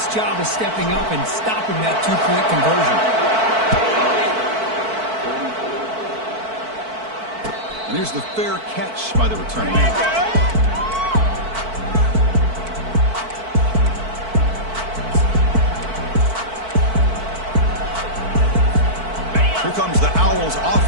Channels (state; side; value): late; left; 4.5 ms